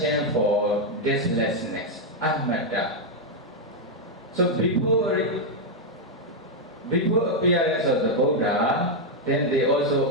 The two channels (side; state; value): both; normal; correlation -0.01